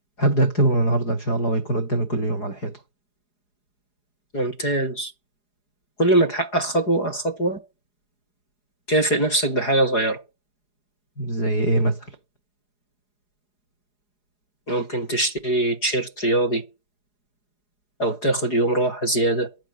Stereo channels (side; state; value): right; late; 4.8 ms